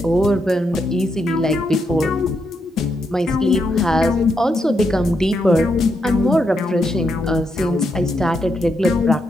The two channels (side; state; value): both; normal; correlation 0.81